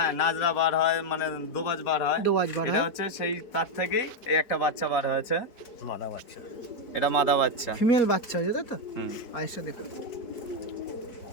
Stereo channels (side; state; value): right; late; 4.1 ms